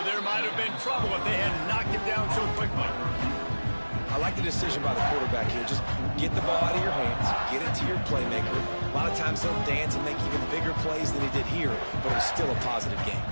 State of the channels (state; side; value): inverted; both; correlation -1.00